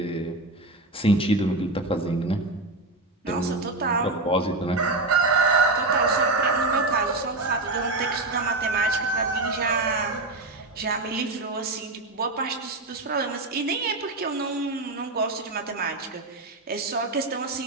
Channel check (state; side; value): quieter; left; 3.0 dB